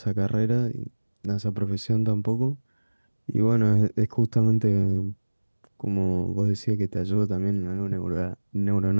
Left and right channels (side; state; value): both; inverted; correlation -1.00